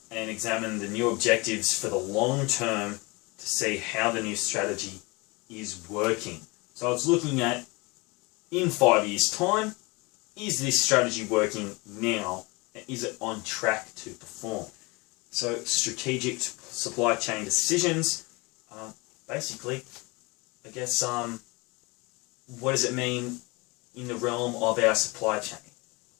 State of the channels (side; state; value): right; quieter; 26.1 dB